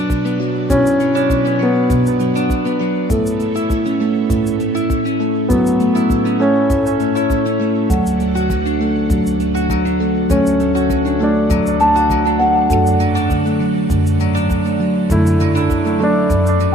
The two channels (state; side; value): normal; both; correlation 0.64